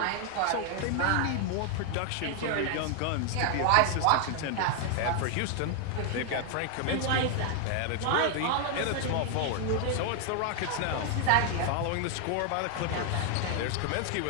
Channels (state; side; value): different; both; correlation 0.00